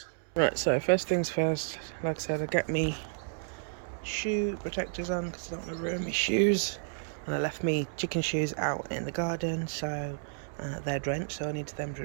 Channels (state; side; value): silent; left; digital silence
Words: Right, so first things first, like I said, I get me shoe protectors on because I don't want to ruin my shoes. And I left me chicken shoes out in the garden, so they're drenched, so I need them to